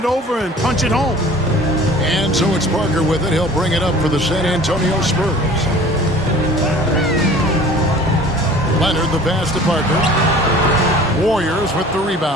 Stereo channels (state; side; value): normal; both; correlation 0.46